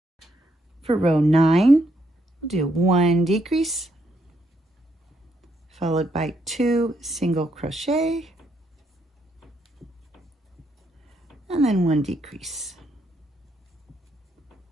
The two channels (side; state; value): both; normal; correlation 0.75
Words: For row 9, we'll do 1 decrease, followed by 2 single crochet, and then 1 decrease.